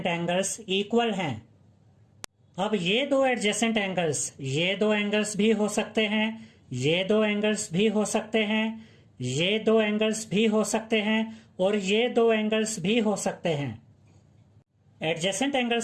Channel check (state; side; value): identical; both; correlation 1.00